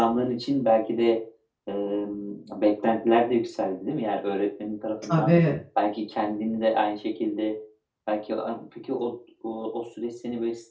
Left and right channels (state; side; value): identical; both; correlation 1.00